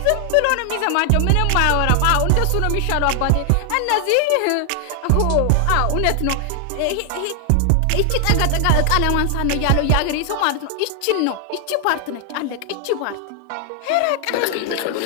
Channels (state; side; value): different; both; correlation 0.00